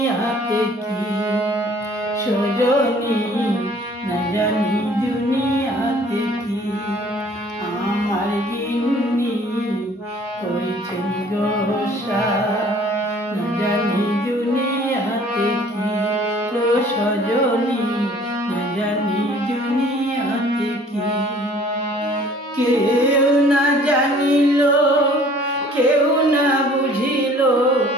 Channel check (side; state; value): both; normal; correlation 0.54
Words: কি সজনী, না জানি দুনিয়াতে কি। আমার গিন্নি করেছেন গোসা, না জানি দুনিয়াতে কি সজনী, না জানি দুনিয়াতে কি। কেউ না জানিল, কেউ না বুঝিল,